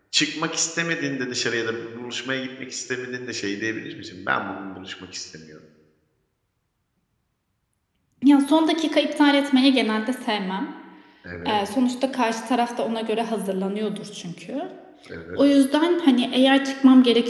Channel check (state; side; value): identical; both; correlation 1.00